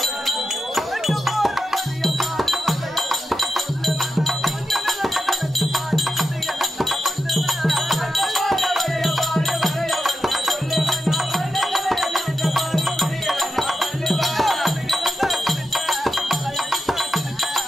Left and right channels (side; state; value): both; normal; correlation 0.88